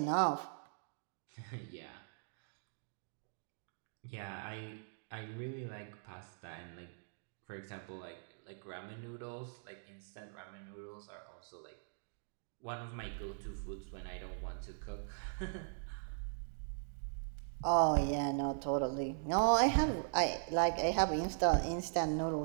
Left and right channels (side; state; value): left; silent; digital silence